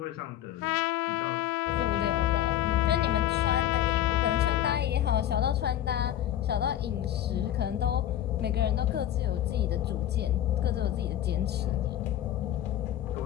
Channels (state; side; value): quieter; right; 11.9 dB